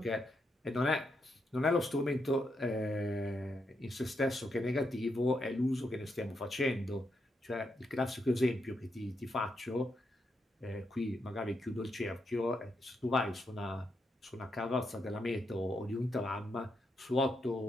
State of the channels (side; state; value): both; normal; correlation 0.81